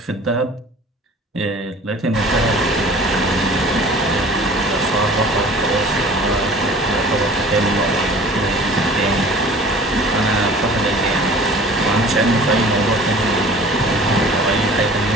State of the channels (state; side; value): normal; both; correlation 0.45